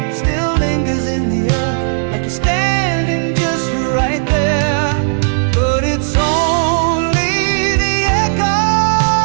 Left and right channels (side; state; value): left; silent; digital silence